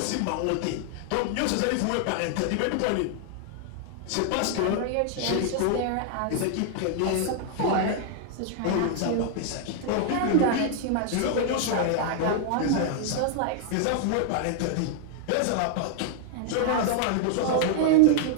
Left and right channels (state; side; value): different; both; correlation 0.00